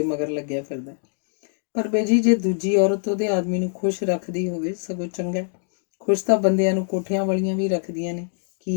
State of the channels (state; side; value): silent; right; digital silence